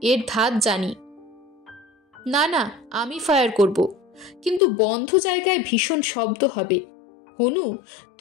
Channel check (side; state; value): right; drops out; at 4.6 s